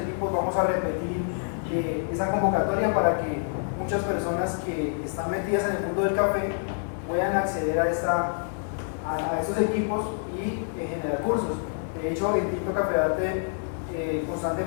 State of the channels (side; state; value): right; silent; digital silence